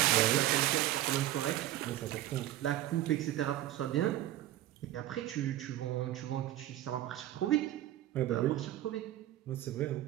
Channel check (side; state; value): left; quieter; 13.9 dB